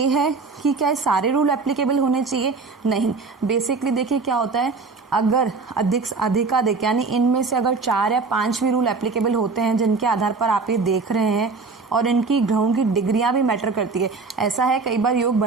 है कि क्या सारे रूल एप्लीकेबल होने चाहिए, नहीं। बेसिकली देखिए क्या होता है, अगर अधिकाधिक यानी इनमें से अगर 4 या 5 भी रूल एप्लीकेबल होते हैं जिनके आधार पर आप ये देख रहे हैं, और इनकी ग्रहों की डिग्रियां भी मैटर करती है। ऐसा है कई बार योग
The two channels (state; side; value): quieter; left; 4.3 dB